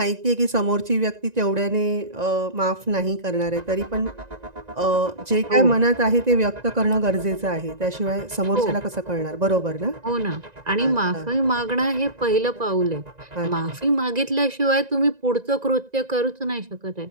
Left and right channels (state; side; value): late; left; 1.9 ms